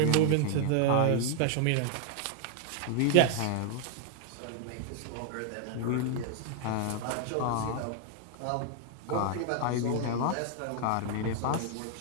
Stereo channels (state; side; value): different; both; correlation 0.00